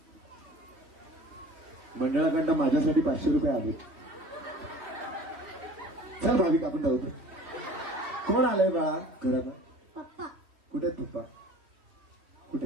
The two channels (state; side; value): late; left; 3.1 ms